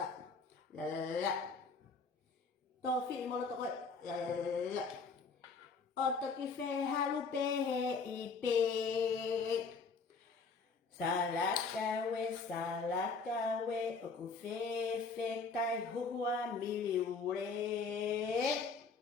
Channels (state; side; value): quieter; right; 4.6 dB